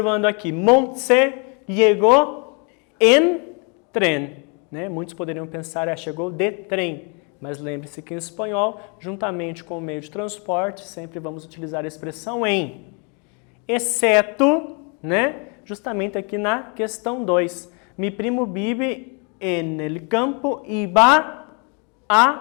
aqui, Montse chegou em tren, né? Muitos poderiam pensar, chegou de trem, mas lembre-se que em espanhol, juntamente com o meio de transporte, sempre vamos utilizar a expressão em, exceto, né? Justamente aqui na questão 2, mi primo vive en el campo y va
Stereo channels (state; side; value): quieter; right; 35.5 dB